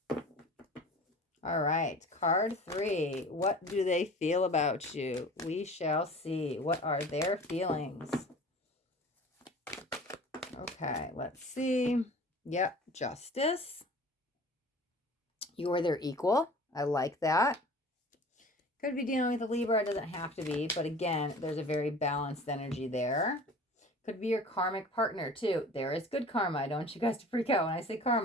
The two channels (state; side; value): normal; both; correlation 0.42